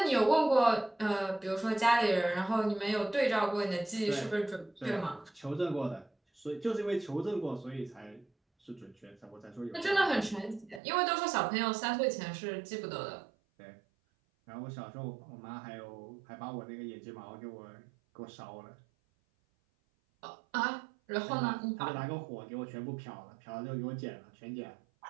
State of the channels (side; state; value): left; drops out; at 10.8 s